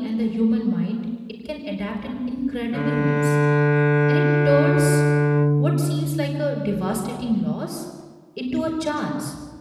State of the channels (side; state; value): both; identical; correlation 1.00